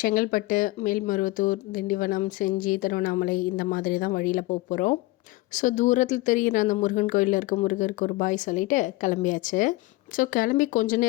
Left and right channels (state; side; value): quieter; right; 20.2 dB